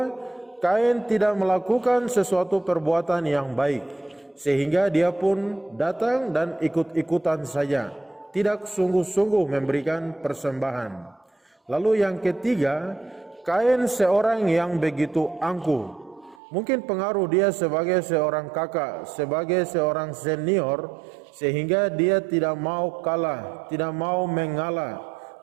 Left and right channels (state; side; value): drops out; left; at 16.4 s